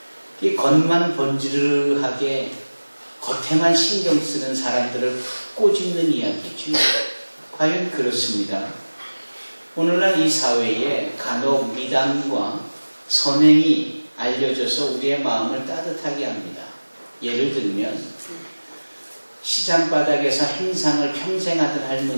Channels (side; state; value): both; inverted; correlation -1.00